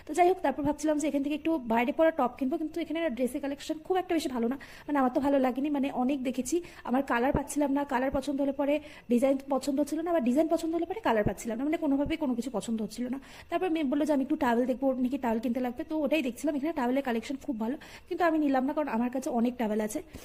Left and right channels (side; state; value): both; identical; correlation 1.00